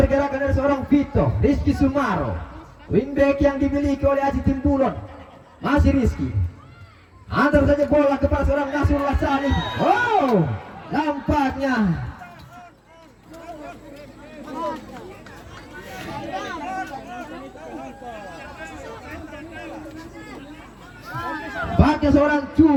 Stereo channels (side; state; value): both; identical; correlation 1.00